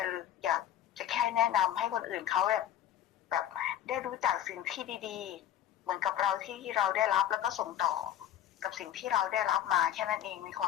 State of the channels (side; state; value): right; quieter; 11.0 dB